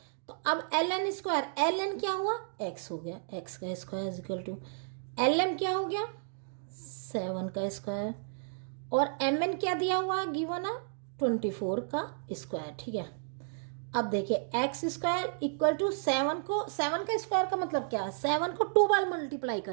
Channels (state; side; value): silent; left; digital silence